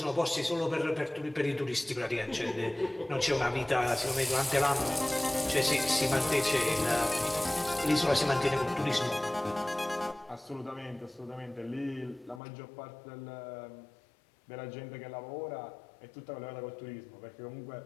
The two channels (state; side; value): drops out; right; at 12.4 s